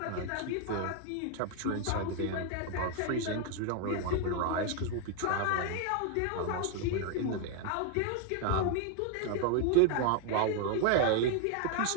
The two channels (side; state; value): both; different; correlation 0.00